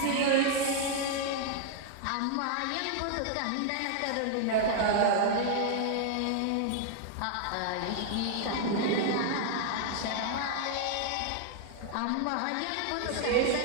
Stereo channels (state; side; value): different; both; correlation -0.01